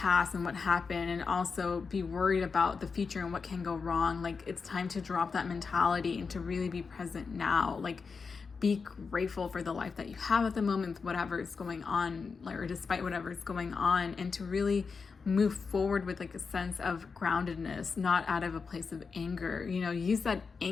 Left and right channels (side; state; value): right; quieter; 5.1 dB